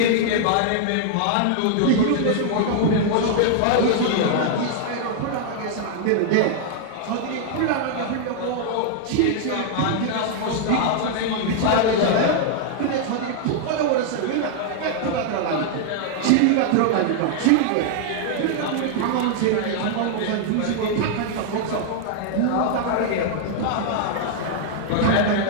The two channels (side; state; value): both; different; correlation -0.01